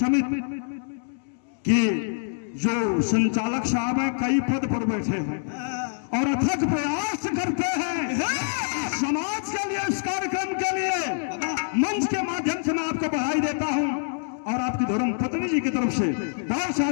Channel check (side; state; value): right; silent; digital silence